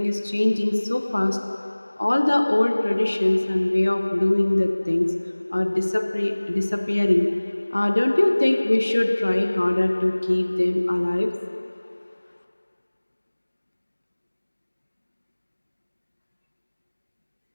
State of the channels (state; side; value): inverted; both; correlation -1.00